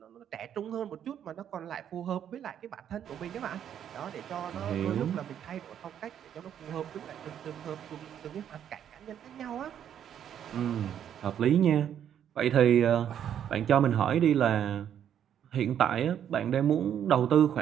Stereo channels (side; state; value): left; quieter; 9.5 dB